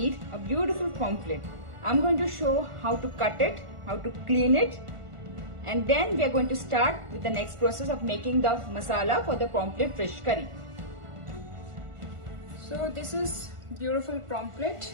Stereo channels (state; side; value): late; left; 1.5 ms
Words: a beautiful pomfret. I'm going to show how to cut it, how to clean it, and then we are going to start with the next process of making the masala for the pomfret fish curry. So this is beautiful pomfret.